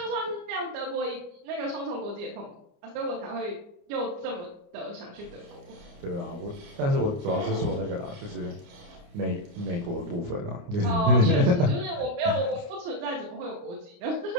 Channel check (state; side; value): late; left; 29 ms